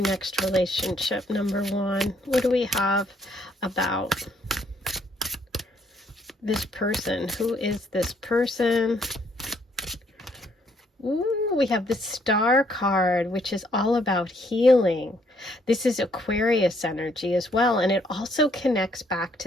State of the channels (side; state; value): both; normal; correlation 0.68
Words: next relationship. Number 1, what do we have about this person? Who is this person? Ooh, we have the Star card, which is all about healing. This is Aquarius energy as well, and it also connects back